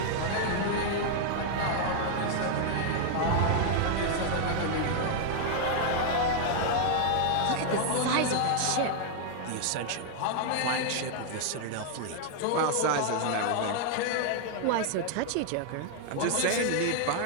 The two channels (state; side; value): different; both; correlation 0.00